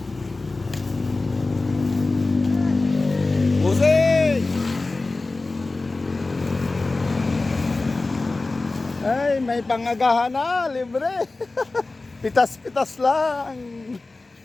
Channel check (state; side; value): quieter; right; 3.3 dB